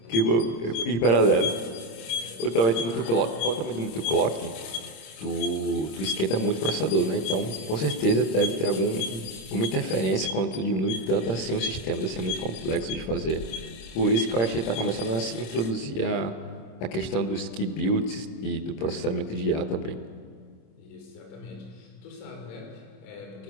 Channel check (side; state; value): right; late; 26 ms